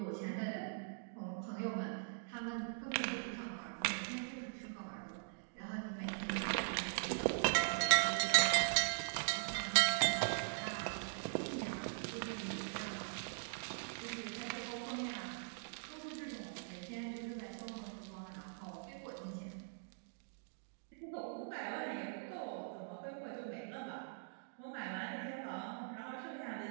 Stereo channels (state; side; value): silent; left; digital silence